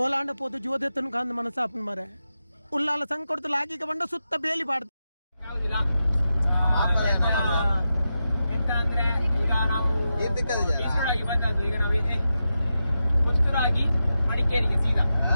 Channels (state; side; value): inverted; both; correlation -0.90